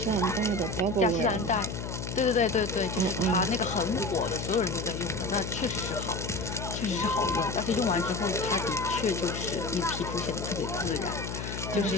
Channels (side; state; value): left; noise; hum, 6 dB below the sound